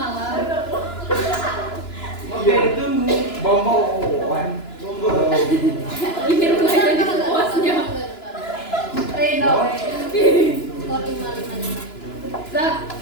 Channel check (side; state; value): right; late; 2.9 ms